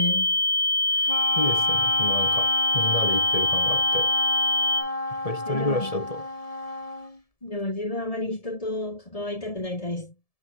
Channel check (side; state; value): right; late; 1.7 ms